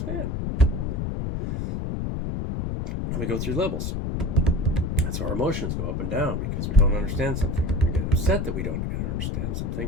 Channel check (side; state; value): left; noise; rumble, 1 dB below the sound